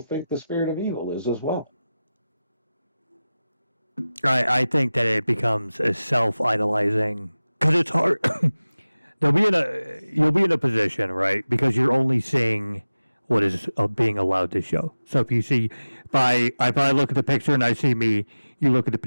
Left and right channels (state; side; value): inverted; both; correlation -0.97